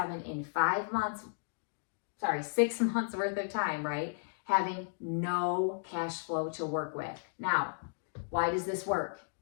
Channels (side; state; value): right; silent; digital silence